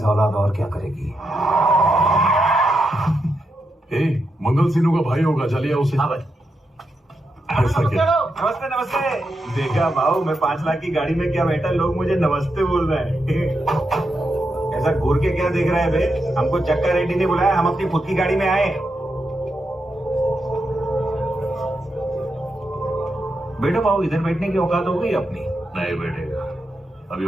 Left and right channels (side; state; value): both; normal; correlation 0.85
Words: औलाद और क्या करेगी? मंगल सिन्हू का भाई होगा, चलिए उसे। हाँ भाई। ऐसा क्या? नमस्ते नमस्ते। देखा भाऊ, मैं 5 लाख की गाड़ी में क्या बैठा, लोग मुझे नमस्ते बोल रहे हैं। ऐसा घूर के क्या देख रहा है बे? हमको चक्का रेड्डी ने बुलाया, हम अपनी खुद की गाड़ी में आए। बेटा भाऊ, इधर बैठने की औकात हो गई अपनी? नहीं बैठेगा। अभी